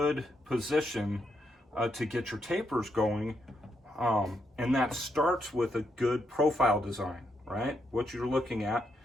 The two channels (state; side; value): normal; both; correlation 0.79